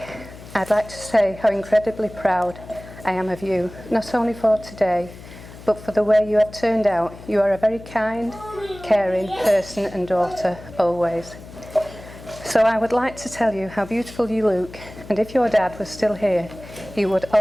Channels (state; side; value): noise; left; hum, 17 dB below the sound